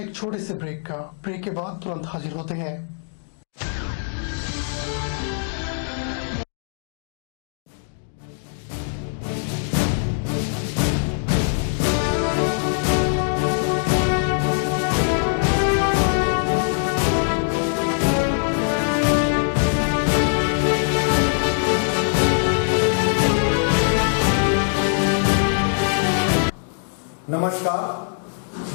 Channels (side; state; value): right; silent; digital silence